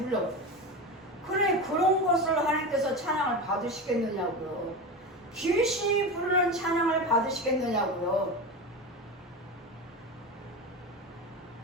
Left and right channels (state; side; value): normal; both; correlation 0.23